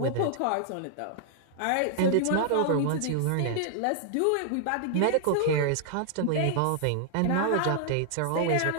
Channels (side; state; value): both; different; correlation -0.01